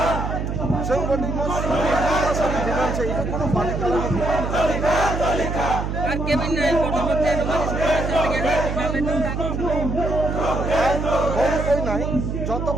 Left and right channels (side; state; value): right; noise; hum, 3 dB below the sound